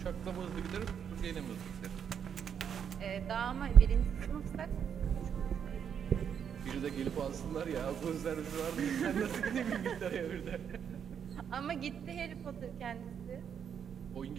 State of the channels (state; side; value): quieter; left; 7.9 dB